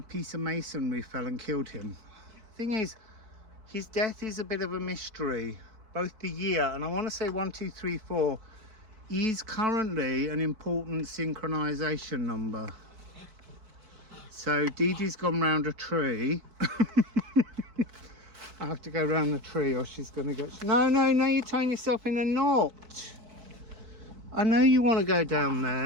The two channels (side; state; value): left; late; 4.6 ms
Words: piece of masonry fell and killed him. Thing is, his death is a bit of a mystery. Both the year, and I want to say 1, 2, 3, 4, is currently an important synchronization number. So Dee Dee's gone round a tree. I have to go round the tree or she's going to get... No, you're tying yourself in a knot. I know you want to go down